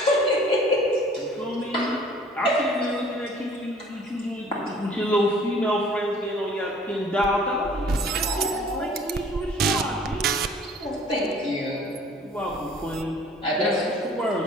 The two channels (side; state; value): both; normal; correlation 0.52